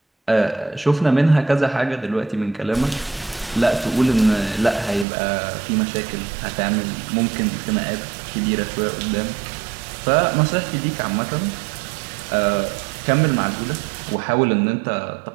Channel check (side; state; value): left; drops out; at 5.1 s